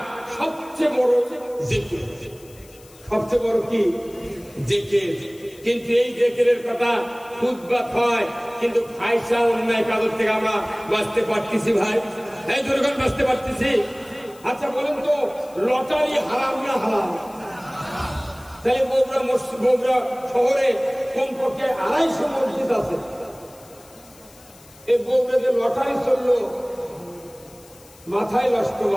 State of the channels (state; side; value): noise; left; hiss, 25 dB below the sound